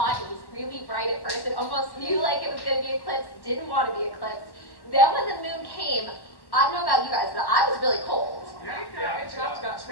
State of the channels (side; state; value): right; late; 1.1 ms